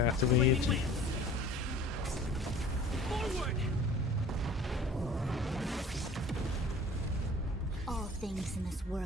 Forward! All things in this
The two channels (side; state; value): both; normal; correlation 0.46